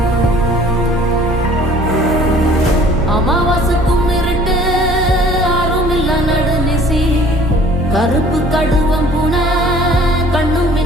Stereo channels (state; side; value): normal; both; correlation 0.52